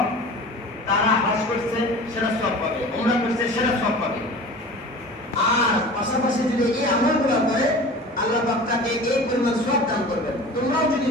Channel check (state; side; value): normal; both; correlation 0.38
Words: তারা হজ করছে সেটা সওয়াব পাবে, উমরা করছে সেটা সওয়াব পাবে, আর পাশাপাশি যদি এই আমলগুলো করে আল্লাহ পাক তাকে এই পরিমাণ সওয়াব দান করবেন। তোমরাও যদি